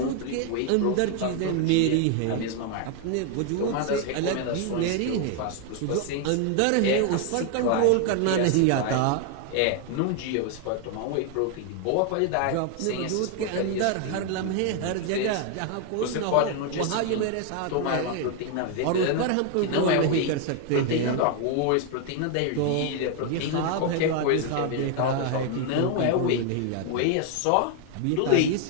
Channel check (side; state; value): both; different; correlation 0.00